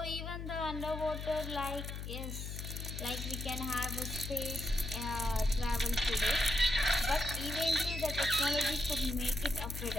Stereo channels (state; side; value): noise; left; hum, 6 dB below the sound